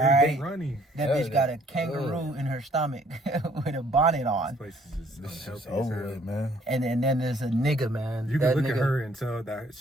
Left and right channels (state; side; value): normal; both; correlation 0.61